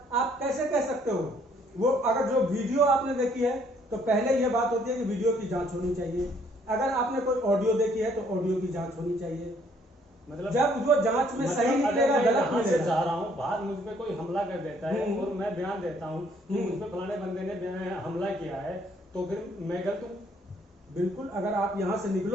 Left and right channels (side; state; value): both; normal; correlation 0.64